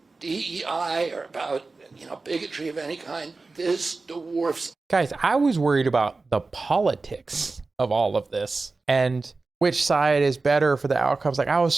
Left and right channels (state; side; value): quieter; left; 3.7 dB